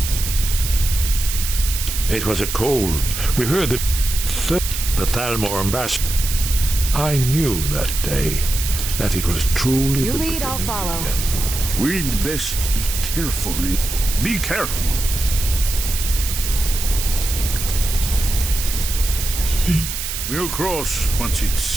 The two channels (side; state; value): right; noise; hiss, 5 dB below the sound